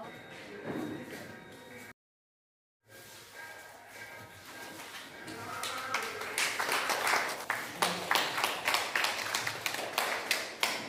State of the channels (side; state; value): both; identical; correlation 1.00